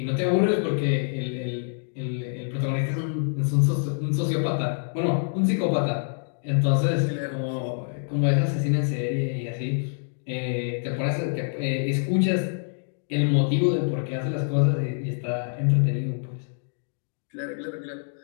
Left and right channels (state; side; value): silent; right; digital silence